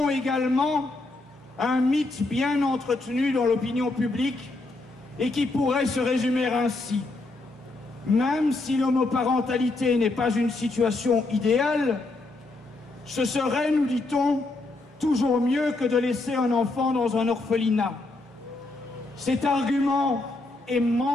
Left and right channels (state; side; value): quieter; right; 3.1 dB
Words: également un mythe bien entretenu dans l'opinion publique et qui pourrait se résumer ainsi. Même si l'homoparentalité n'est pas une situation idéale, ce serait, nous dit-on, toujours mieux que de laisser un enfant dans un orphelinat. Cet argument est